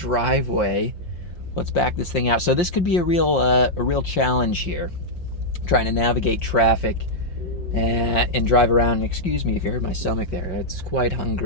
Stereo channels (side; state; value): right; late; 5.7 ms